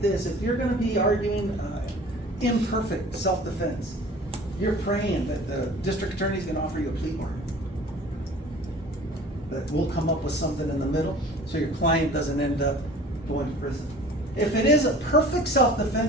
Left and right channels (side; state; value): both; normal; correlation 0.45